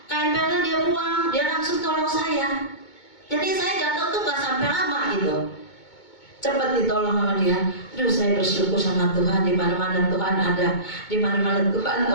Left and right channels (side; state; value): right; late; 2.2 ms